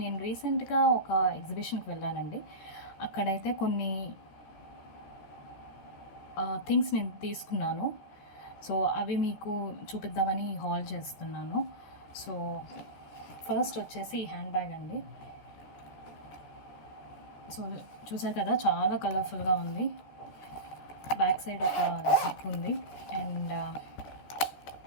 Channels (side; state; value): right; late; 14 ms